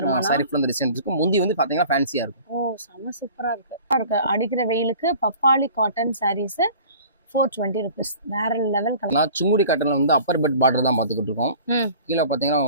சாரி ஃபுல்லா டிசைன் இருக்கும். முந்தி வந்து பாத்தீங்கன்னா ஃபேன்சியா இருக்கும். ஓ, செம சூப்பரா இருக்கு. அடிக்கிற வெயிலுக்கு பப்பாளி காட்டன் சாரீஸ் 420 rupees. வேற லெவல் கலர். நான் சுங்குடி காட்டன்ல வந்து அப்பர் பெட் பார்டர் தான் பாத்துக்கிட்டு இருக்கோம். கீழே பாத்தீங்கன்னா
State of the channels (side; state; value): both; inverted; correlation -0.45